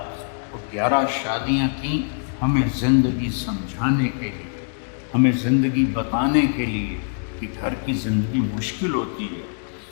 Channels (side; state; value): right; silent; 62 dB below the other